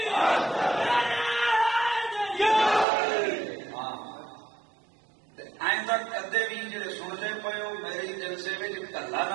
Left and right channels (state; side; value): drops out; left; at 2.9 s